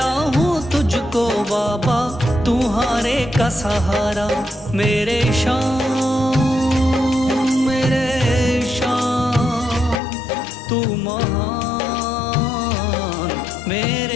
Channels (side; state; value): right; drops out; at 10.0 s